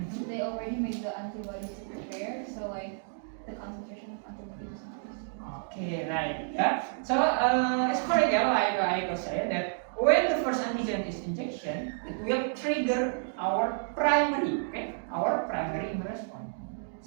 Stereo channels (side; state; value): left; silent; digital silence